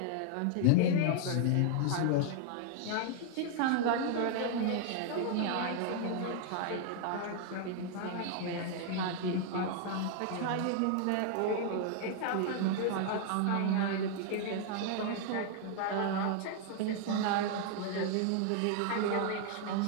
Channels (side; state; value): both; different; correlation 0.00